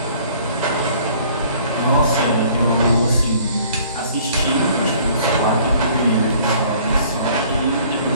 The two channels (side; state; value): both; inverted; correlation -0.55